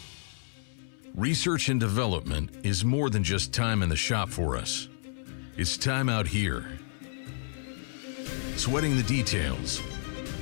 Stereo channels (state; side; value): silent; right; 58 dB below the other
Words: Research and development is more than just time in the shop for us. It's time out here, sweating the details,